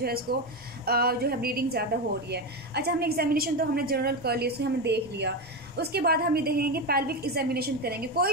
है इसको जो है ब्लीडिंग ज़्यादा हो रही है। अच्छा, हमने एग्जामिनेशन तो हमने जनरल कर लिया, उसको हमने देख लिया। उसके बाद हम ये देखेंगे पेल्विक एग्जामिनेशन करेंगे। कोई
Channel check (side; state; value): both; normal; correlation 0.15